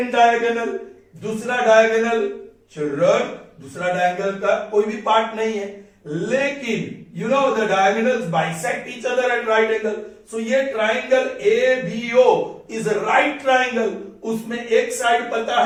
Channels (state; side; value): identical; both; correlation 1.00